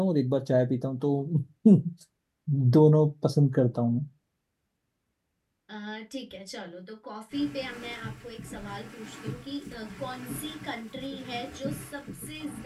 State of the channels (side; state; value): both; identical; correlation 1.00